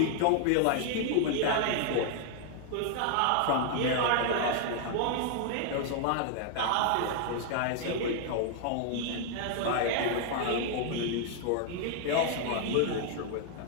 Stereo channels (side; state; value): both; different; correlation 0.00